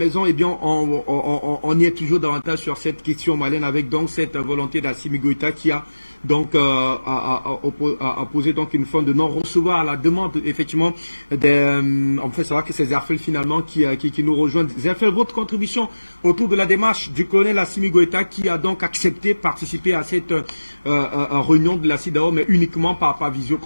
Eh bien, on y est toujours davantage sur cette question malienne avec donc cette volonté d'Assimi Goïta qui a donc a posé donc une forme de non-recevoir à la demande effectivement on fait savoir que c'est Zerfel finalement qui nous rejoint. Zerfel, votre contribution autour de la démarche du colonel Assimi Goïta qui a donc accepté de participer à cette réunion de la CEDEAO mais uniquement par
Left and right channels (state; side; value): inverted; both; correlation -1.00